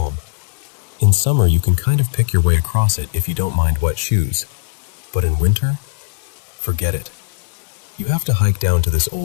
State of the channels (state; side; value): silent; right; digital silence